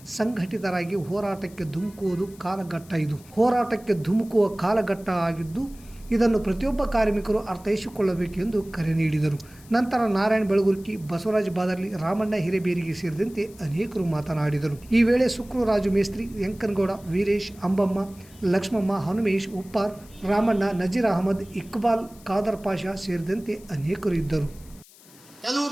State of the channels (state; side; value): noise; left; hiss, 24 dB below the sound